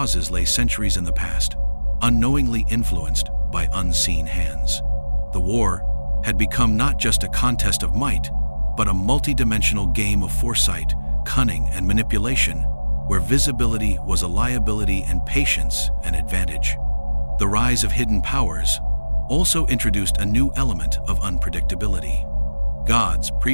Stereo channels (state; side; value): inverted; both; correlation -1.00